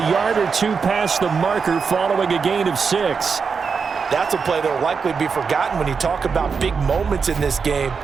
yard or 2 past the marker following a gain of 6. That's a play that will likely be forgotten when you talk about big moments in this game.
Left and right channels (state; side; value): quieter; left; 5.5 dB